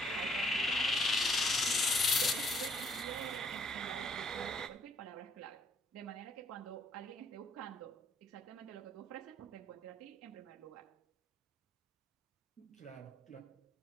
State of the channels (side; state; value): both; normal; correlation 0.66